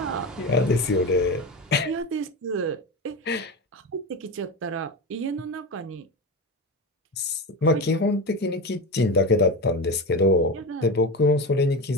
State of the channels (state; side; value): normal; both; correlation 0.22